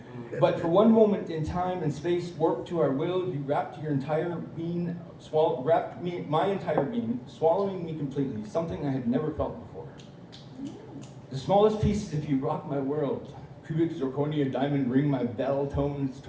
But for one moment in time and space warped to our will, you wrapped your entire being, my entire being, swallowing me completely, something I had never felt before. The smallest piece of you rock my world. Cubic zirconia diamond ring my bell tones,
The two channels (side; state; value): both; identical; correlation 1.00